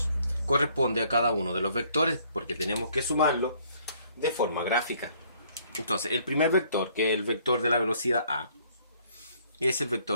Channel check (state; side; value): inverted; both; correlation -0.63